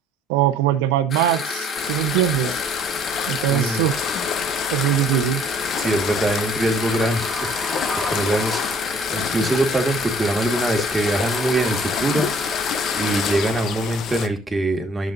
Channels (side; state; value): both; normal; correlation 0.56